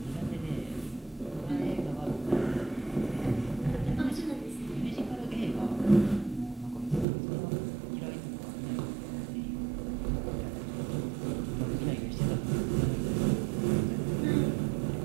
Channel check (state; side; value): drops out; left; at 7.1 s